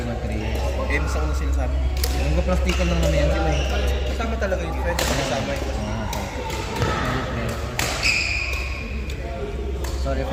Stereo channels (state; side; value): identical; both; correlation 1.00